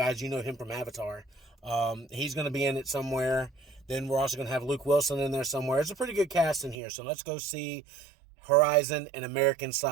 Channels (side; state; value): left; drops out; at 6.8 s